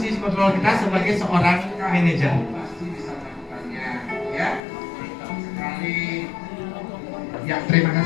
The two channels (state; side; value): drops out; right; at 4.6 s